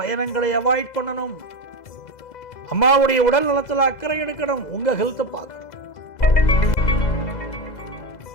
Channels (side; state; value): right; late; 2.0 ms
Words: அவாய்ட் பண்ணணும். அம்மாவுடைய உடல் நலத்தில் அக்கறை எடுக்கணும். உங்க ஹெல்த்தை பார்க்கணும்.